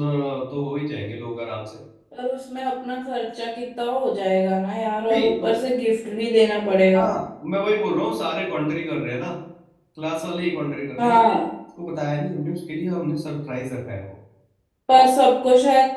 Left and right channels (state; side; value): identical; both; correlation 1.00